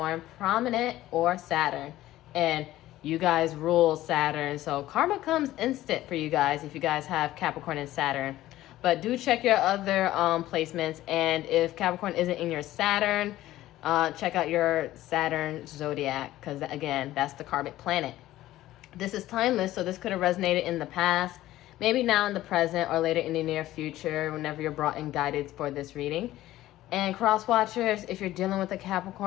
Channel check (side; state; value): right; quieter; 15.1 dB